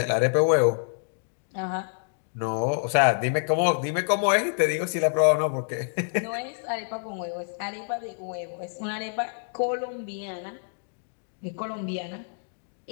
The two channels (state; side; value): silent; right; digital silence